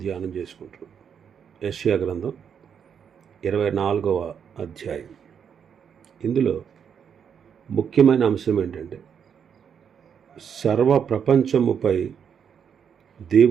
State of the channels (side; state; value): left; quieter; 7.6 dB